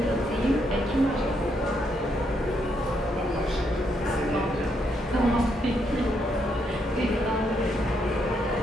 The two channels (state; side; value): normal; both; correlation 0.76